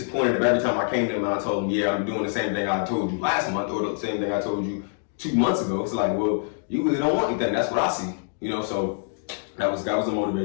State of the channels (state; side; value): silent; right; digital silence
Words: if every time I came to him and I told him, yeah, I'm doing the same thing I told you last month or the same thing I told you 2 months ago. It's like, well, you really don't want anything. That's what I see, So that was a